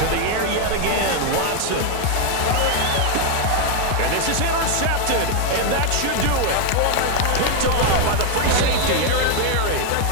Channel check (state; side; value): different; both; correlation 0.01